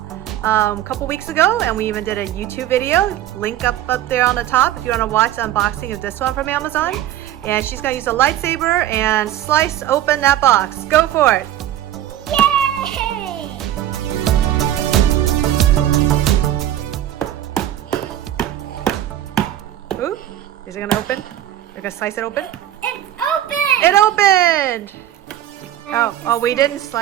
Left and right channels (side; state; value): left; quieter; 12.3 dB